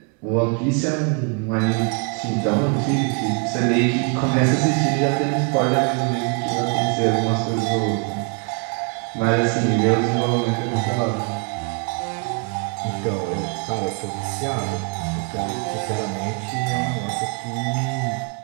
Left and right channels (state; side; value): quieter; left; 35.0 dB